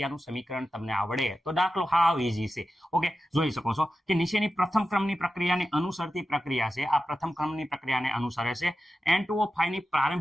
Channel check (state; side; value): normal; both; correlation 0.92